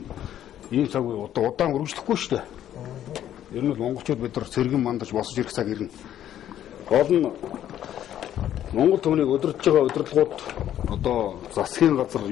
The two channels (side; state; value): right; quieter; 11.2 dB